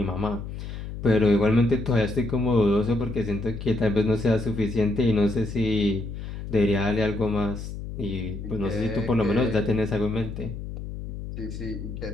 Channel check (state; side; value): noise; left; hum, 8 dB below the sound